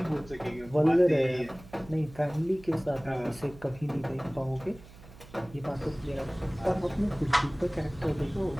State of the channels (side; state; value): right; noise; hum, 20 dB below the sound